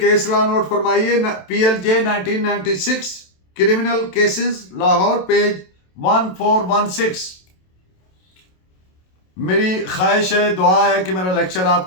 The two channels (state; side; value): late; right; 27 ms